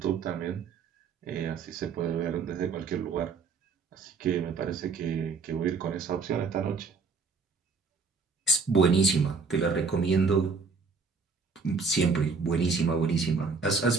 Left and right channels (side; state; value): left; quieter; 4.7 dB